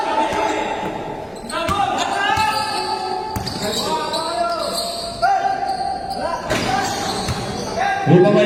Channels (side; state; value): both; identical; correlation 1.00